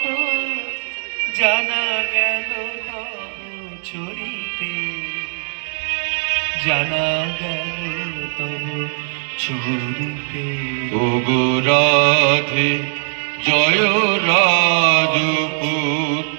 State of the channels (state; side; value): silent; left; digital silence